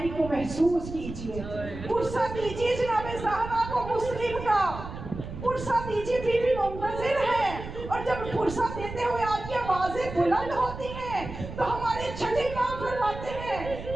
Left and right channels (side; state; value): right; noise; rumble, 10 dB below the sound